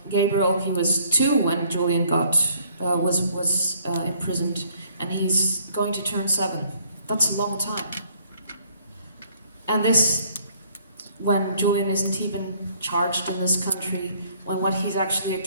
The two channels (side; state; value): both; inverted; correlation -0.62